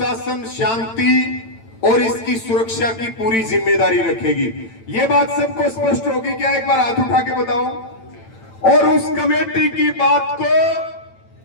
शांति और इसकी सुरक्षा की पूरी जिम्मेदारी रखेगी। ये बात सबको स्पष्ट होगी क्या? एक बार हाथ उठा के बताओ। और उस कमेटी की बात को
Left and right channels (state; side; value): late; right; 8.9 ms